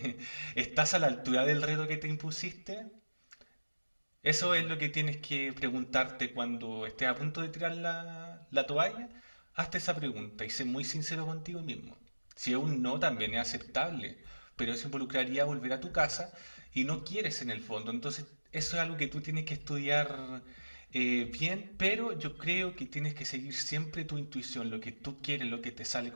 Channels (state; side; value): inverted; both; correlation -1.00